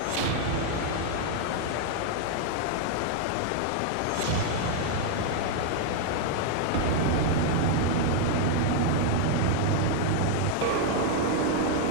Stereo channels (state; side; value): different; both; correlation 0.00